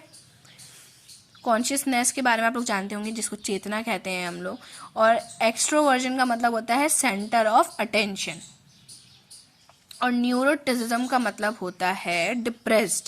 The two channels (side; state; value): both; identical; correlation 1.00